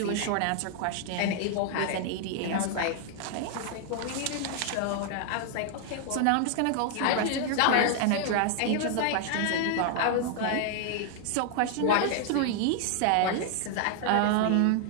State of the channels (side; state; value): both; different; correlation 0.00